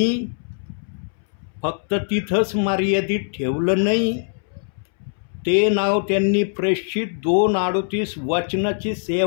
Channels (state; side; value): silent; right; 64 dB below the other